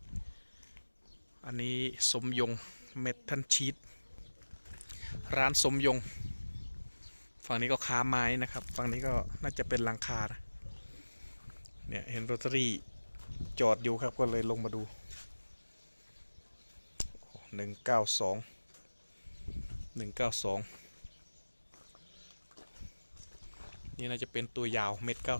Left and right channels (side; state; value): both; inverted; correlation -1.00